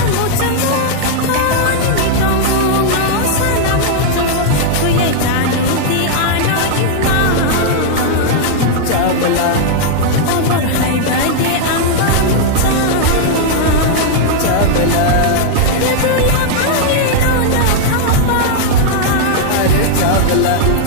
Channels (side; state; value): both; different; correlation -0.01